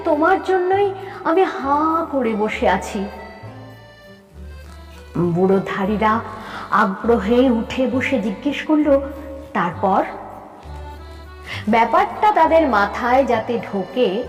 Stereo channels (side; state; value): both; identical; correlation 1.00